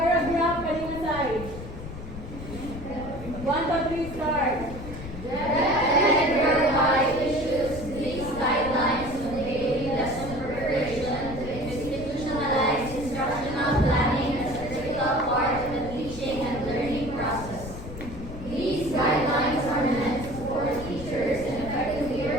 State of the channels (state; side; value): noise; left; rumble, 10 dB below the sound